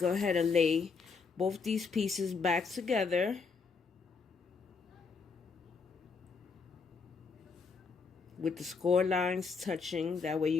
ahead and lay both these pieces back together. With the score lines touching, that way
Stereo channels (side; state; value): right; quieter; 5.0 dB